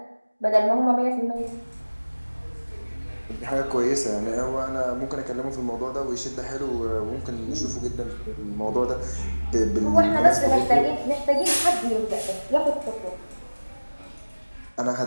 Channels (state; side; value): inverted; both; correlation -1.00